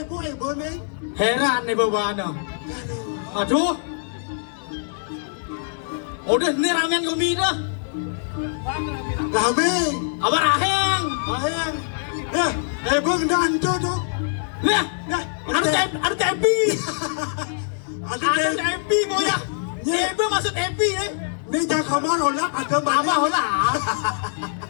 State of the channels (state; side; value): silent; right; digital silence